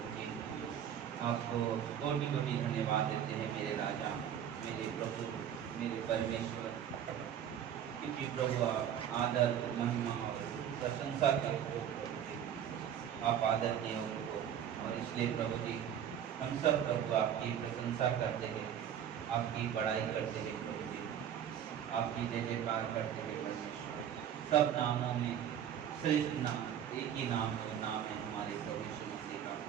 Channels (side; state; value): left; quieter; 9.4 dB